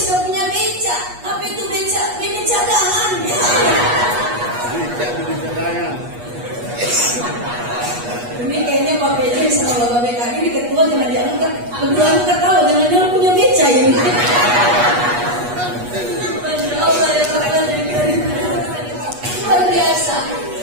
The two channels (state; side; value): late; left; 8.3 ms